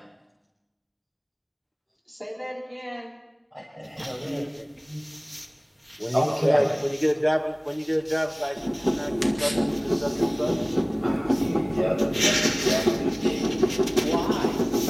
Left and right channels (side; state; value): both; identical; correlation 1.00